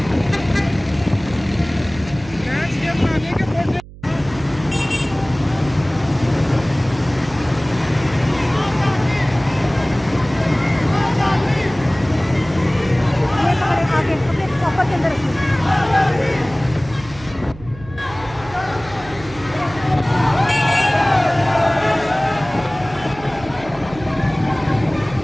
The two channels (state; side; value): noise; right; hum, 18 dB below the sound